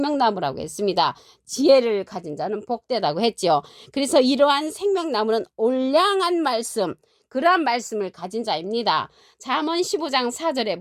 했습니다. 지혜를 가진 자는 복되다고 했지요. 그래서 이러한 생명나무는 올량한 말씀, 그러한 말씀을 가진 자입니다. 잠언 15장 4절에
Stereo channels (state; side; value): identical; both; correlation 1.00